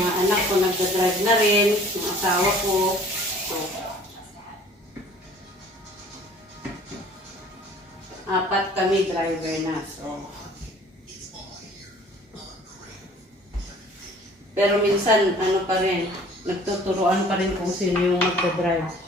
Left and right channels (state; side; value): normal; both; correlation 0.52